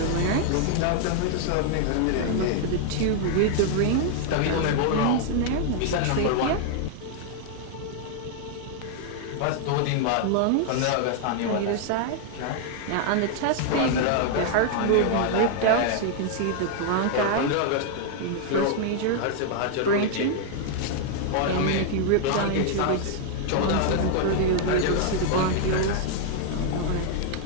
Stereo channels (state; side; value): different; both; correlation 0.00